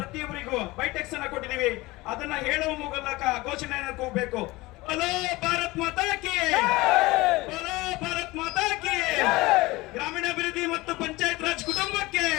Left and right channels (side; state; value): right; quieter; 20.9 dB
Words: ಬೈಟೆಕ್ಸ್ ಅನ್ನ ಕೊಟ್ಟಿದ್ದೀವಿ. ಅದನ್ನ ಹೇಳುವ ಮೂಲಕ ಘೋಷಣೆಯನ್ನು ಕೂಗಬೇಕು. ಬಲೋ ಭಾರತ್ ಮಾತಾ ಕಿ, ಬಲೋ ಭಾರತ್ ಮಾತಾ ಕಿ. ಗ್ರಾಮೀಣಾಭಿವೃದ್ಧಿ ಮತ್ತು ಪಂಚಾಯತ್ ರಾಜ್ ಕುಟುಂಬಕ್ಕೆ,